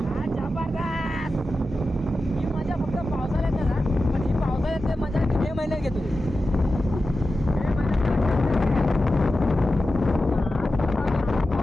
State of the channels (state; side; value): normal; both; correlation 0.93